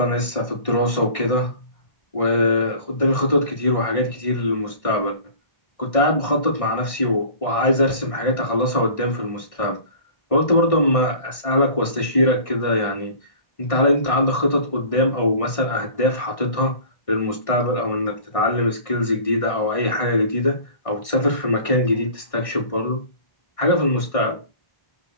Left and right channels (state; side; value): late; right; 1.6 ms